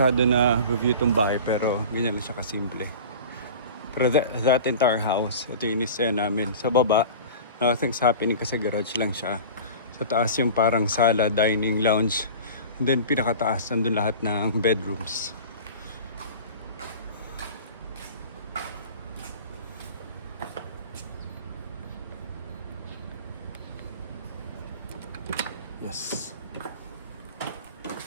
na review itong bahay pero ganyan lang siya kasimple. Pero that entire house, ito yung inisaya namin. Sa baba, nothing's happening kasi garage lang siya. Sa taas yung parang sala, dining, lounge. And then pinakataas, nandun lahat ng bedrooms. Yes.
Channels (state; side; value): inverted; both; correlation -0.37